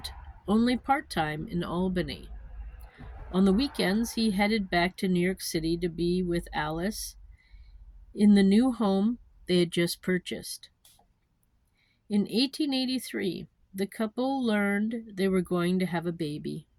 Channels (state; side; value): identical; both; correlation 1.00